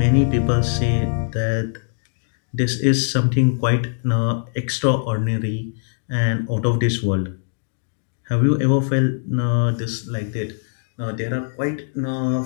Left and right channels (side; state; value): right; silent; digital silence